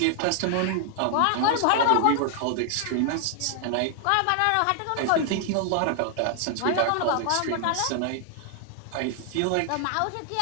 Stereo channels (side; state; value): both; different; correlation 0.00